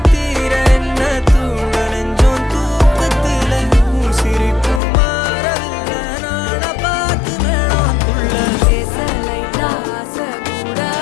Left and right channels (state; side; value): drops out; right; at 4.8 s